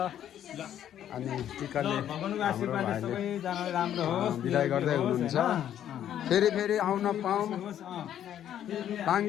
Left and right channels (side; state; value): right; quieter; 10.6 dB